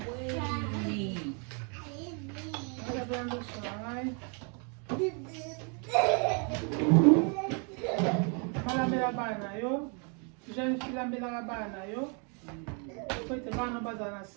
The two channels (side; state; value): left; quieter; 37.8 dB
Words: Noja pina loso nangai. Malambela bana yo. Jeune fille lambela bana yo. Faut te bana bazana